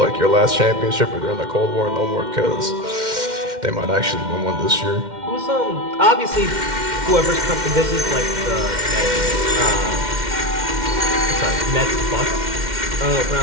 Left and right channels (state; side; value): late; left; 2.1 ms